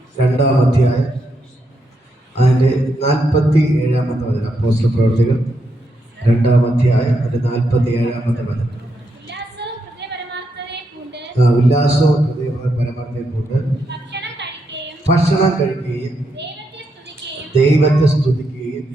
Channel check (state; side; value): normal; both; correlation 0.81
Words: 2-ാം അധ്യായം അതിൻ്റെ 47-ാമത്തെ വചനം. അപ്പോസ്തല പ്രവർത്തികൾ 2-ാം അധ്യായം അതിൻ്റെ 47-ാമത്തെ വചനം. ഉല്ലാസവും ഹൃദയ പരമാർത്ഥതയെ കൊണ്ട് ഭക്ഷണം കഴിക്കുകയും ദൈവത്തെ സ്തുതിക്കുകയും